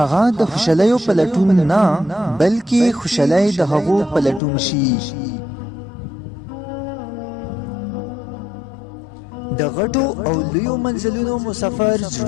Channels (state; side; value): drops out; right; at 4.4 s